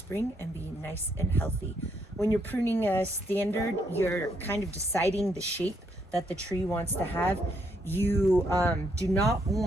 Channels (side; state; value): both; normal; correlation 0.74